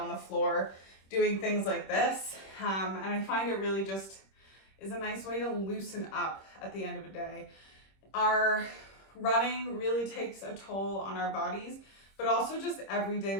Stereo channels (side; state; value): right; late; 26 ms